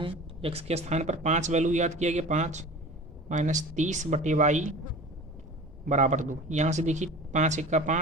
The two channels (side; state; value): both; normal; correlation 0.38